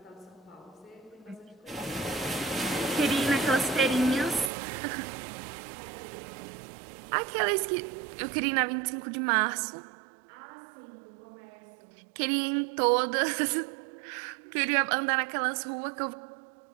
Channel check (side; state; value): left; drops out; at 4.5 s